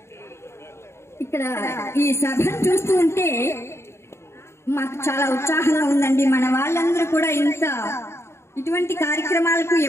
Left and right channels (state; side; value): late; right; 0.13 ms